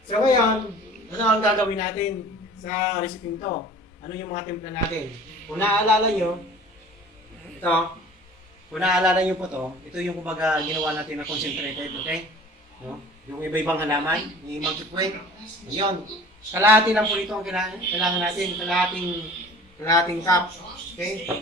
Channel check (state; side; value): normal; both; correlation 0.45